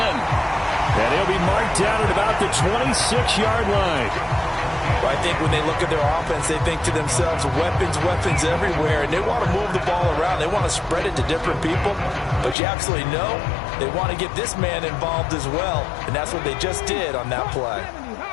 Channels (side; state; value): right; drops out; at 12.6 s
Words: And he'll be marked down at about the 26-yard line. Well, I think when they look at their offense, they think to themselves, weapons, weapons everywhere, and they want to move the ball around. They want to spread it to different people, but you absolutely know they want to get this man involved as well, and that's what they just did on that play.